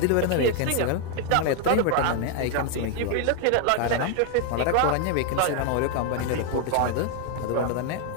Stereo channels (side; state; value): both; different; correlation 0.00